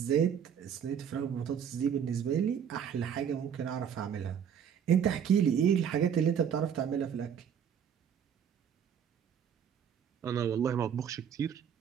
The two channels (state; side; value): quieter; left; 8.2 dB